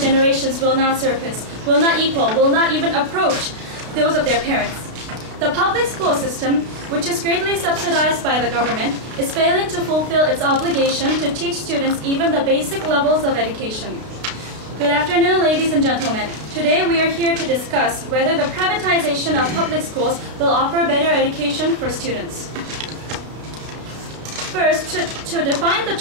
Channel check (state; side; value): late; left; 33 ms